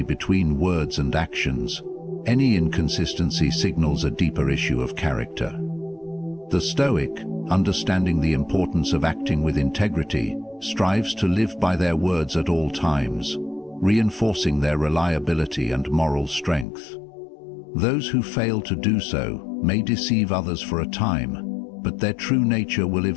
between words and actions, any inconsistency signals a deeper issue of character. The Stoic, understanding the importance of acting with integrity, strives to live by their words at all times, reinforcing their reliability and moral strength. Those who fail to do so may deceive others for a time, but their true nature will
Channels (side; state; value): right; drops out; at 16.7 s